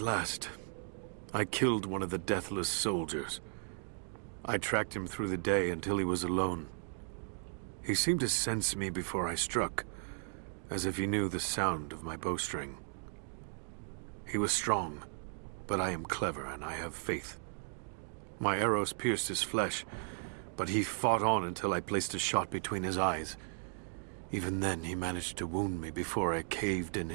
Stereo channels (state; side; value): silent; left; 54 dB below the other